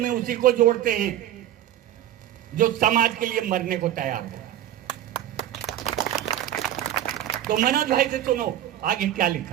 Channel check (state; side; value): quieter; left; 12.0 dB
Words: में उसी को जोड़ते हैं जो समाज के लिए मरने को तैयार है। तो मनोज भाई से सुनो आगे क्या